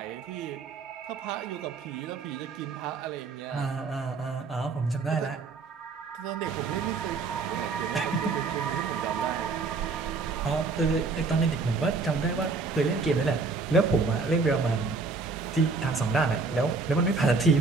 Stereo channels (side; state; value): left; quieter; 4.2 dB